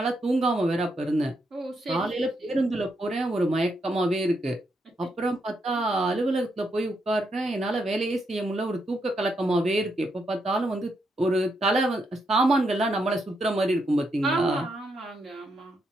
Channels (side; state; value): both; normal; correlation 0.80